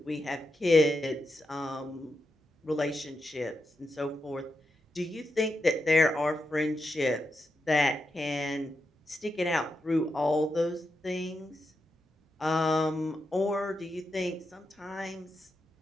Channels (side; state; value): both; normal; correlation 0.86